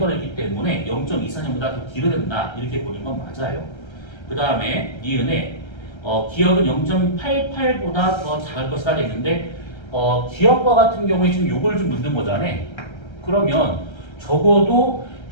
있기 때문에 0.24년보다 더 길어야 된다 이렇게 보는 건 맞아요. 그 다음에 니은에 기억은 0.88보다 더 작을 것이다 했는데 기억과 같은 경우에 지금 요걸 좀 묻는 거잖아. 그러면 적어도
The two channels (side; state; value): right; late; 1.3 ms